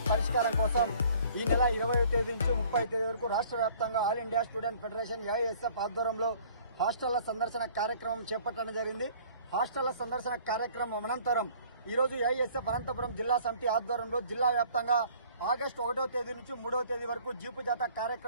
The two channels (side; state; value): both; inverted; correlation -0.54